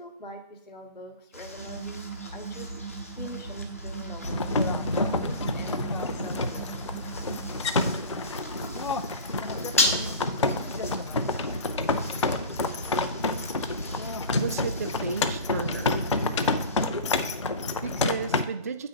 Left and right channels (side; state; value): both; inverted; correlation -0.33